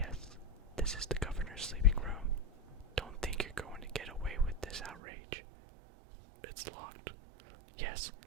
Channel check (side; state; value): left; drops out; at 5.0 s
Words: this is the governor's sleeping room. Don't think you're going to get away with this outrage. It's locked. Yes,